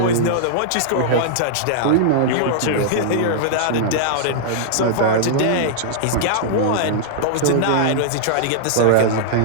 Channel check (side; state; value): both; different; correlation -0.02